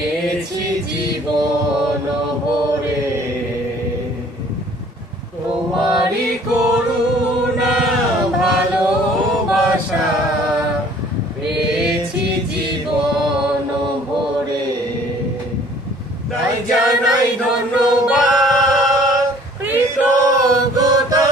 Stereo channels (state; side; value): normal; both; correlation 0.54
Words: জীবন ভরে। তোমারি করুণা ভালোবাসা পেয়েছি জীবন ভরে। তাই জানাই ধন্যবাদ, কৃতজ্ঞতা